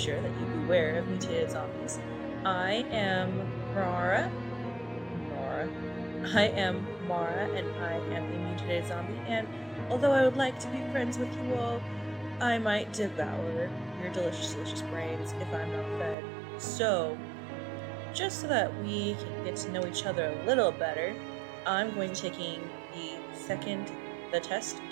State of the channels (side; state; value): left; drops out; at 16.2 s